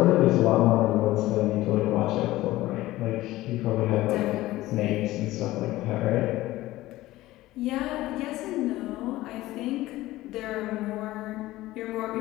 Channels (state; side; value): quieter; right; 17.0 dB